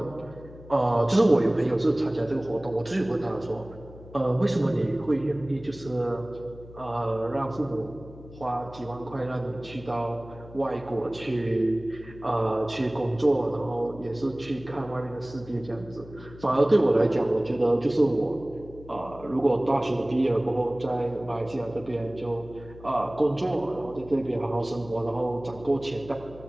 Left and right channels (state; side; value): noise; left; hum, 18 dB below the sound